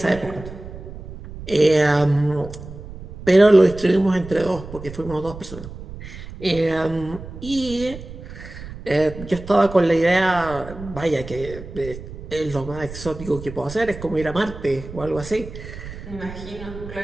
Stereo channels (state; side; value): noise; right; rumble, 13 dB below the sound